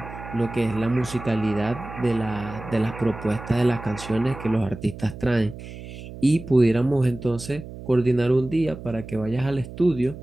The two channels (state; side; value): noise; right; hum, 13 dB below the sound